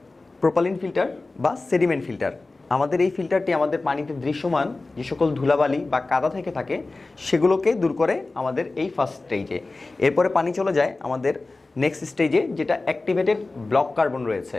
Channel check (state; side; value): quieter; right; 3.3 dB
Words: প্রোপালিন ফিল্টার বা সেডিমেন্ট ফিল্টার। আমাদের এই ফিল্টারটি আমাদের পানিতে দৃশ্যমান যে সকল ধুলাবালি বা কাদা থেকে থাকে সেগুলোকে দূর করে আমাদের এই ফার্স্ট স্টেজে। এরপরে পানি চলে যায় আমাদের নেক্সট স্টেজে, যেটা অ্যাক্টিভেটেড ব্লক কার্বন রয়েছে।